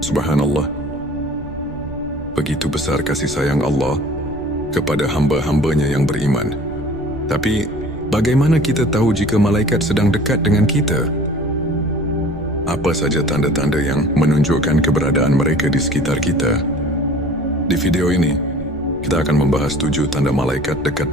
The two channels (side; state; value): right; noise; rumble, 17 dB below the sound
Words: Subhanallah. Begitu besar kasih sayang Allah kepada hamba-hambanya yang beriman. Tapi, bagaimana kita tahu jika malaikat sedang dekat dengan kita? Apa saja tanda-tanda yang menunjukkan keberadaan mereka di sekitar kita? Di video ini, kita akan membahas 7 tanda malaikat